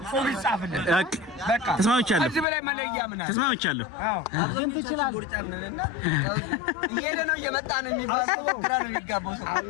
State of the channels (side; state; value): right; drops out; at 2.5 s